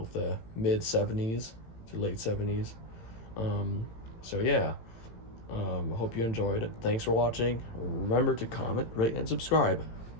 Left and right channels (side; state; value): right; late; 18 ms